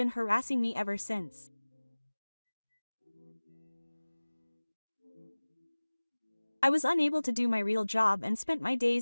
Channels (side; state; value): both; inverted; correlation -1.00